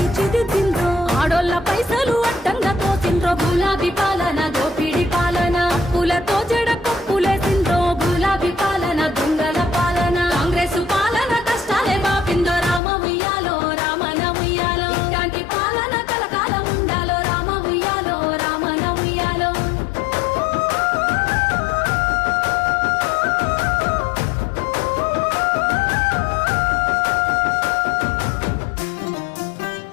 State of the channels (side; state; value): right; drops out; at 12.8 s